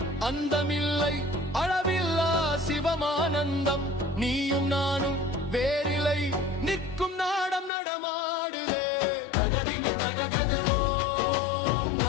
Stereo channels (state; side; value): drops out; right; at 7.7 s